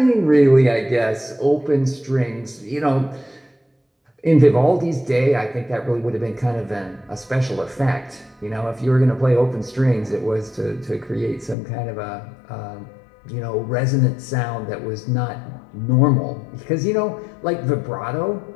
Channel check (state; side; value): drops out; right; at 11.6 s